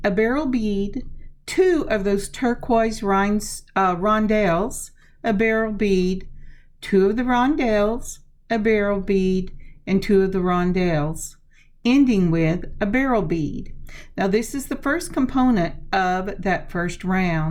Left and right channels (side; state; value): both; identical; correlation 1.00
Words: a beryl bead, two of those turquoise rondelles, a beryl bead, two of the rondelles, a beryl bead, and two of the rondelles, ending with a beryl bead. Now this is the first component of that first